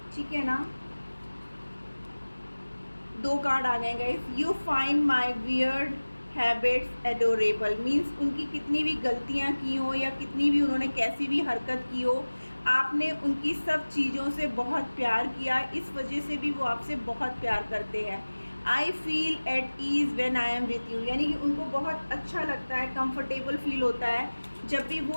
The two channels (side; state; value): both; inverted; correlation -1.00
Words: ठीक है ना। 2 कार्ड आ गए guys. You find my weird habits adorable, means उनकी कितनी भी गलतियाँ की हो या कितनी भी उन्होंने कैसी भी हरकत की हो, आपने उनकी सब चीज़ों से बहुत प्यार किया, इस वजह से भी वो आपसे बहुत प्यार करते हैं। I feel at ease when I am with you, यानी कि उनको बहुत अच्छा लगता है, कंफर्टेबल फील होता है जब भी